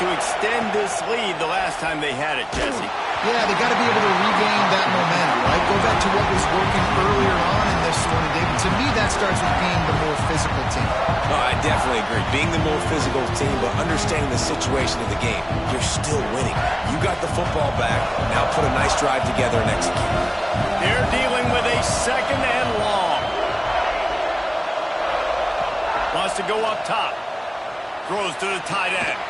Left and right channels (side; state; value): both; identical; correlation 1.00